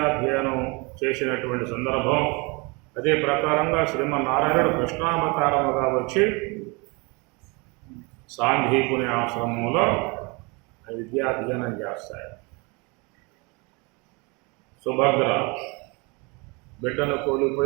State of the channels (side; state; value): left; quieter; 28.8 dB